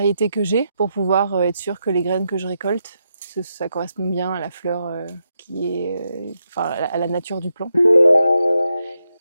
que j'ai pour pouvoir être sûr que les graines que je récolte, ça correspond bien à la fleur qui est... à la nature du plant.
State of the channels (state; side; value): inverted; both; correlation -0.84